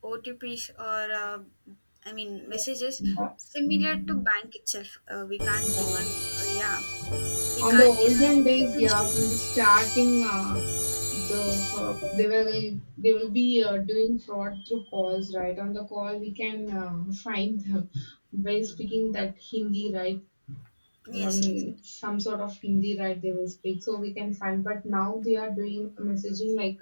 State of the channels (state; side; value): inverted; both; correlation -1.00